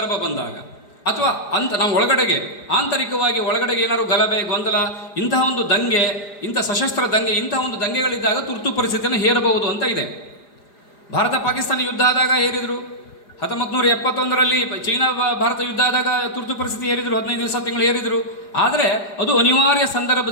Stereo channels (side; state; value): right; late; 4.9 ms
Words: ಬಂದಾಗ ಅಥವಾ ನಾವು ಒಳಗಡೆಗೆ ಆಂತರಿಕವಾಗಿ ಒಳಗಡೆಗೆ ಏನಾದ್ರು ಗಲಭೆ ಗೊಂದಲ ಇಂತಹ ಒಂದು ದಂಗೆ ಇಂಥ ಸಶಸ್ತ್ರ ದಂಗೆ ಇಂತಹ ಒಂದು ದಂಗೆಗಳಿದ್ದಾಗ ತುರ್ತು ಪರಿಸ್ಥಿತಿಯನ್ನು ಹೇರಬಹುದು ಅಂತ ಇದೆ. ಭಾರತ ಪಾಕಿಸ್ತಾನ ಯುದ್ಧ ಆದಾಗ ಹೇರಿದರು. 1971ರಲ್ಲಿ ಚೀನಾ ಭಾರತ ಯುದ್ಧ ಆದಾಗ ತುರ್ತು ಪರಿಸ್ಥಿತಿ ಹೇರಿದರು, 15 ದಿವಸ ತಿಂಗಳು ಹೇರಿದರು. ಆದರೆ ಅದು ಅನಿವಾರ್ಯ